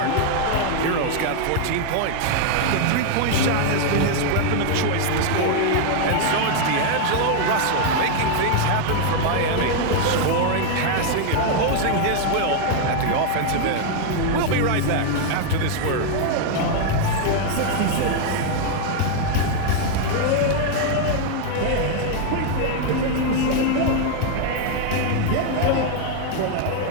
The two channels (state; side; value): different; both; correlation 0.00